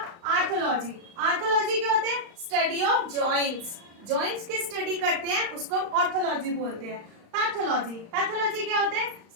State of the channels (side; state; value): left; late; 35 ms